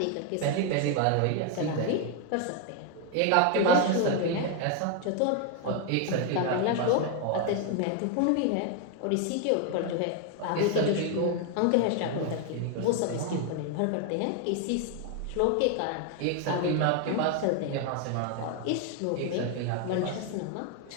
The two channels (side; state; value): both; different; correlation 0.01